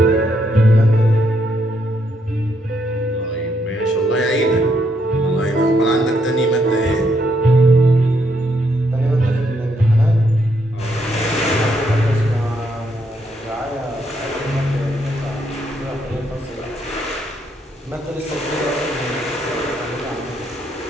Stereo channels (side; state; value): both; normal; correlation 0.75